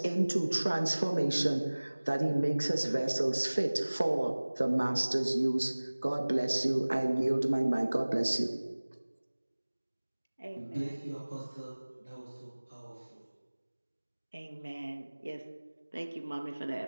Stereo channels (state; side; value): inverted; both; correlation -1.00